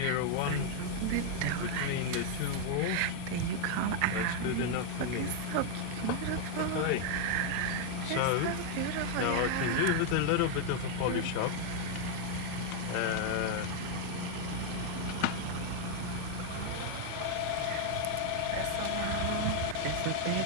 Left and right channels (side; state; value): both; different; correlation 0.00